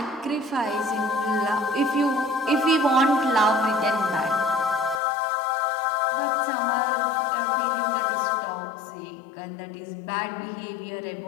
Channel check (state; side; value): drops out; right; at 5.0 s